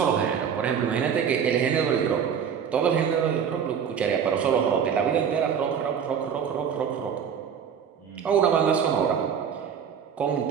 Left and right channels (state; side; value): quieter; left; 7.6 dB